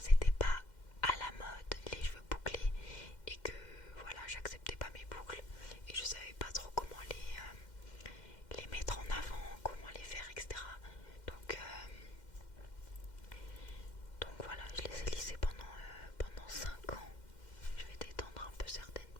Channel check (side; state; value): right; late; 2.1 ms